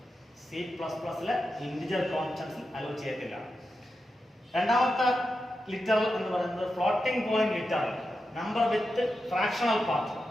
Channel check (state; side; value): normal; both; correlation 0.89